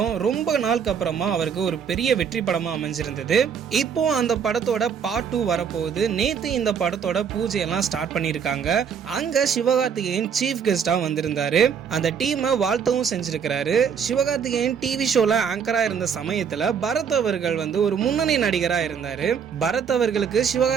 ரொம்ப நாளுக்கு அப்புறமா அவருக்கு ஒரு பெரிய வெற்றி படமா அமைஞ்சிருந்தது. இப்போ அந்த படத்தோட பார்ட் 2 வரப்போகுது. நேத்து இந்த படத்தோட பூஜை எல்லாம் ஸ்டார்ட் பண்ணிருக்காங்க. அங்க சிவகார்த்திகேயன் சீஃப் கெஸ்டா வந்திருந்தாரு. அந்த டீமை வாழ்த்தவும் செஞ்சிருக்கிறாரு. சிவகார்த்திகேயன் டிவி ஷோல ஆங்கரா இருந்த சமயத்துல பரத் அவர்கள் ஒரு முன்னணி நடிகரா இருந்தாரு. பரத் அவர்களுக்கு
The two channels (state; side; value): quieter; left; 7.1 dB